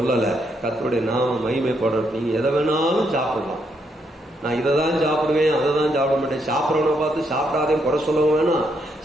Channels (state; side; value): normal; both; correlation 0.77